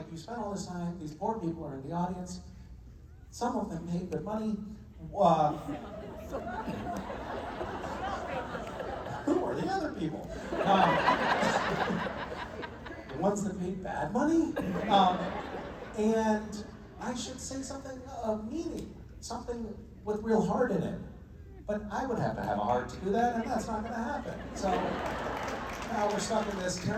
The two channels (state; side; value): identical; both; correlation 1.00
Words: you spent all this time, these poor people are in the audience, some of them paid good money. Who are the other people? The ones that paid bad money? And I should say something of meaning, something with real heart in it. But I would have to have a heart to do that, and that's not going to happen. So now we're stuck in this